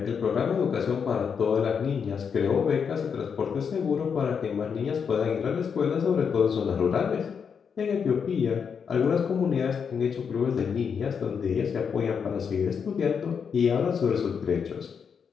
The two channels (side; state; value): right; quieter; 6.6 dB